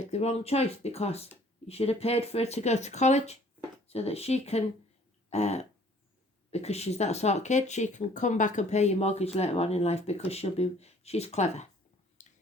the wrong choice because you should have paid for her to go to college so that she can, because she's that sort of kid, she can come back and pay your mortgage later on in life because she's clever.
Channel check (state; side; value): normal; both; correlation 0.56